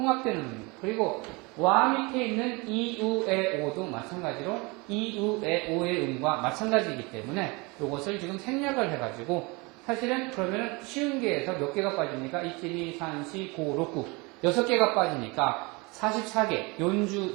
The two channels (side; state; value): left; quieter; 26.8 dB